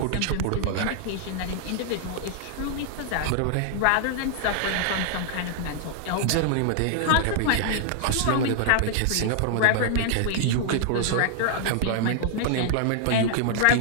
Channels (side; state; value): both; different; correlation -0.01